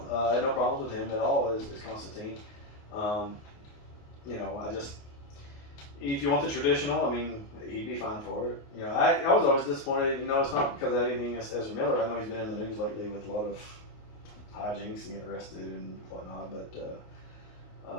I had no problems with him at all as Constantine. If you want the traditional, I mean, he'd be fine for it. I was always disappointed. It's not because of anything as Ezra Miller. I know he's been in the news lately with a lot of hijinks and getting arrested and whatnot, but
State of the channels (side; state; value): right; late; 28 ms